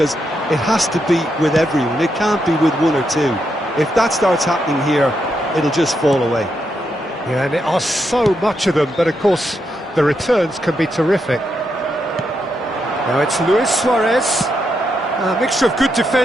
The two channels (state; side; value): normal; both; correlation 0.82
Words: it has to be with everyone. It can't be with one or two. If that starts happening here, it'll just fall away. Yeah, and there are so much of them, but of course the returns can be terrific. Now it's Luis Suarez. A mixture of good